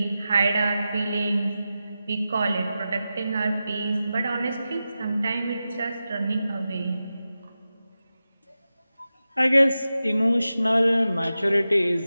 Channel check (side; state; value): both; inverted; correlation -0.93